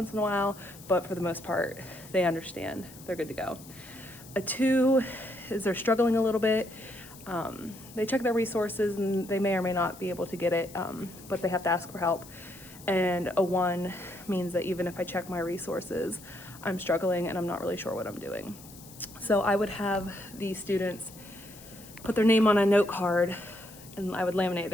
in a while, but for the most part, they understand, they're good to go. A 2 is they're struggling a little bit. They check their resources and they may or may not be able to get it, but they have to ask for help. And a 1 means that even if I check my resources, I'm struggling and I'm not really sure what I'm doing. So I would have these students put their name on a note card and I would laminate it.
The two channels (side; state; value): left; noise; hiss, 19 dB below the sound